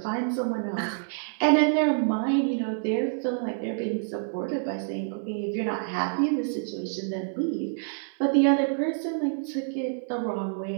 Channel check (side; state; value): left; silent; 60 dB below the other